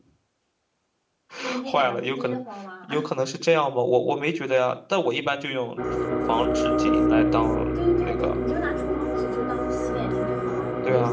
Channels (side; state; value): both; identical; correlation 1.00